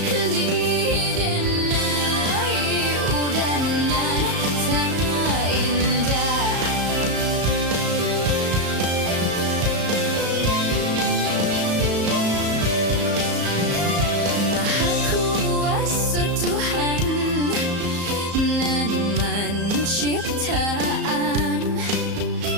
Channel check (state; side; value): late; left; 34 ms